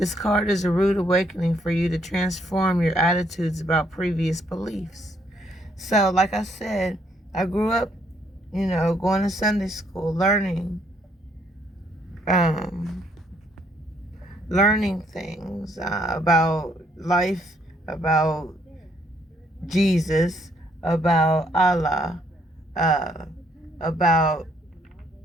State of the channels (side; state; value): both; normal; correlation 0.69